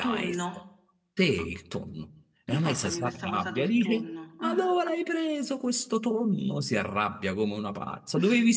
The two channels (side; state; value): both; identical; correlation 1.00